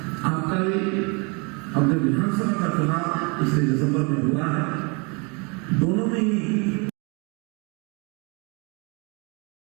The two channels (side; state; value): left; quieter; 31.6 dB